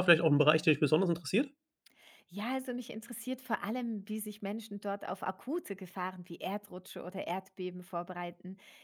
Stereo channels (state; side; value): identical; both; correlation 1.00